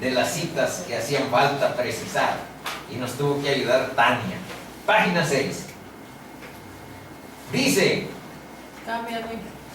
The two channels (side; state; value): both; identical; correlation 1.00